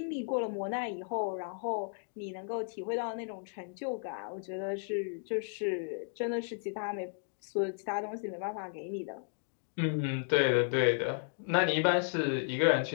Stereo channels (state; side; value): silent; right; digital silence